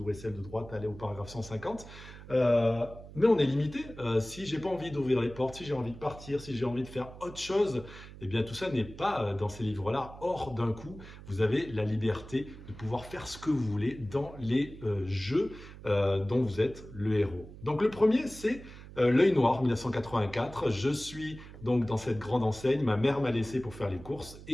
celle de droite, elle est au paragraphe 150. Mais on est limité. Si j'ai pas envie d'ouvrir les portes, si j'ai envie de partir, si j'ai envie de faire autre chose, eh bien tout ça n'est pas dans ces livres-là. Or, d'un coup, vous avez la liberté de pouvoir faire ce que vous voulez dans les jeux dont vous êtes le héros. Donc le premier, c'est L'œil noir, 1984. Je suis donc dans cette grande enseigne. Ma mère m'a laissé pour faire les courses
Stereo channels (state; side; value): noise; right; hum, 16 dB below the sound